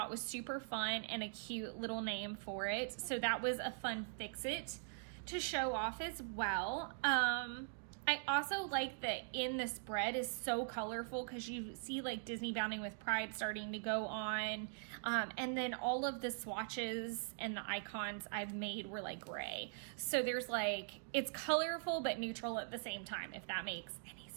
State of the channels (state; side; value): silent; left; digital silence